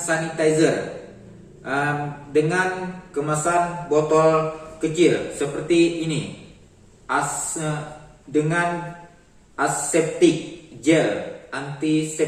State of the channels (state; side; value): identical; both; correlation 1.00